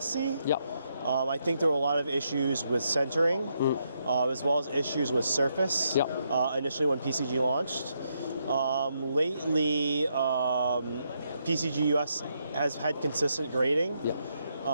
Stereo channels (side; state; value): both; inverted; correlation -0.78